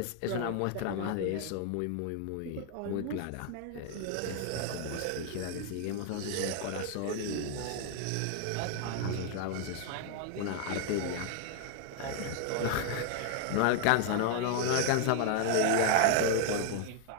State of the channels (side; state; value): both; different; correlation 0.00